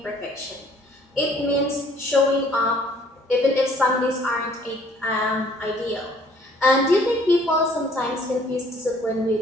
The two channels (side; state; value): both; normal; correlation 0.58